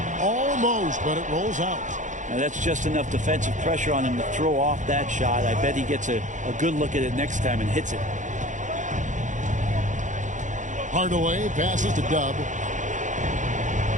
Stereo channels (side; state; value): left; late; 0.36 ms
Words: Almost, but it rolls out. Now that's just enough defensive pressure on him to throw off that shot. I bet he gets a good look at it next time and hits it. Hardaway passes to Dub.